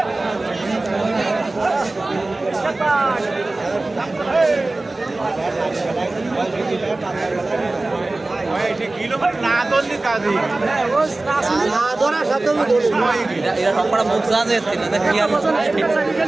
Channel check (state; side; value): quieter; left; 3.0 dB